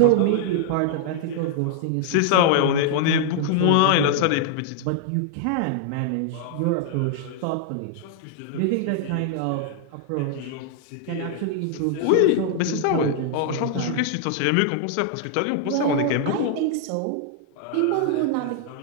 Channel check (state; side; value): different; both; correlation 0.00